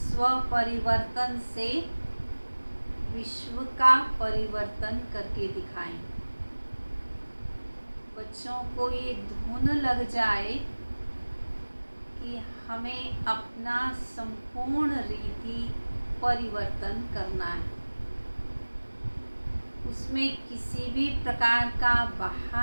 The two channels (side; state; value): both; inverted; correlation -1.00